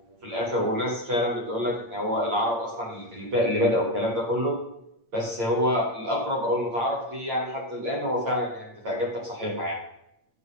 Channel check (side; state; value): left; late; 8.7 ms